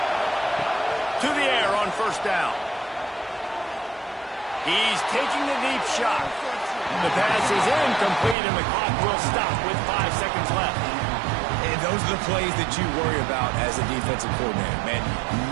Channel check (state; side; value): drops out; left; at 8.3 s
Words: To the air on 1st down. He's taking the deep shot. The pass is incomplete, and the clock will stop with 5 seconds left. And those are the plays that you worry about as a defensive coordinator, man.